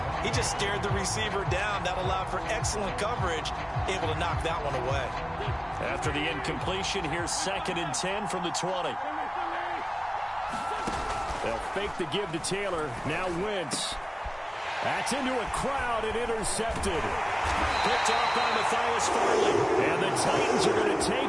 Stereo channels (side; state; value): both; identical; correlation 1.00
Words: he just stared the receiver down. That allowed for excellent coverage, able to knock that one away. After the incompletion, here's 2nd and 10 from the 20. They'll fake the give to Taylor. Now Wentz. That's into a crowd and intercepted. Picked off by Matthias Farley. And the Titans are going to